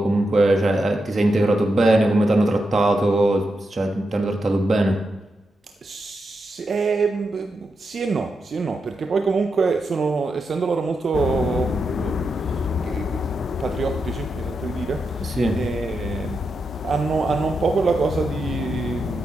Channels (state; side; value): normal; both; correlation 0.86